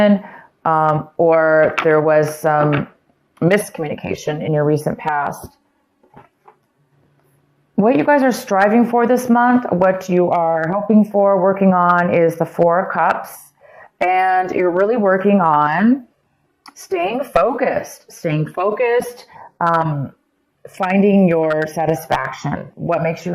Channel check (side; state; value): both; identical; correlation 1.00